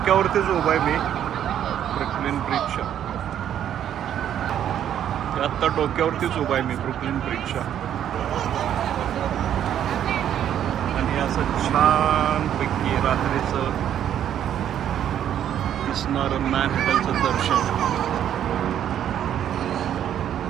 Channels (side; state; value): left; quieter; 10.2 dB